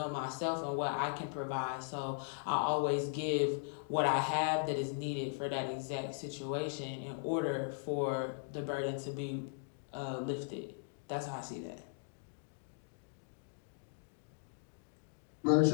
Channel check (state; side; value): silent; right; digital silence